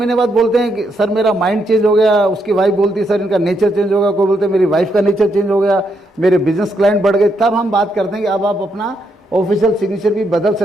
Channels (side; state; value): both; normal; correlation 0.78